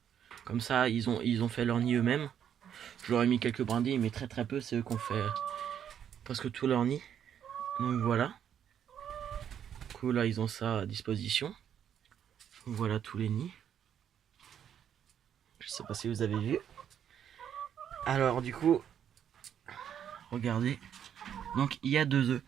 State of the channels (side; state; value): left; quieter; 9.1 dB